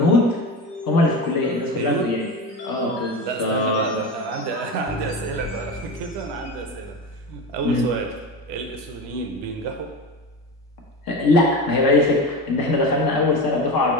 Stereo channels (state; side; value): normal; both; correlation 0.25